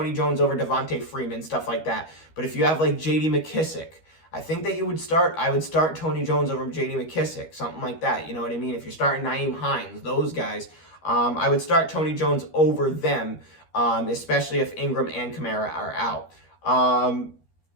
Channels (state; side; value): late; right; 13 ms